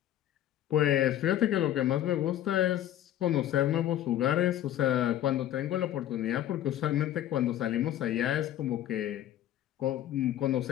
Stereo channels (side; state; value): right; quieter; 12.2 dB